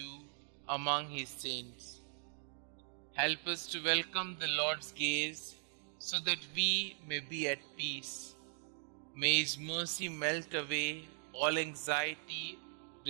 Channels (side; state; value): left; silent; digital silence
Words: among his saints. Help us to welcome the Lord's gaze so that we may be at peace. May his mercy melt away all anxiety,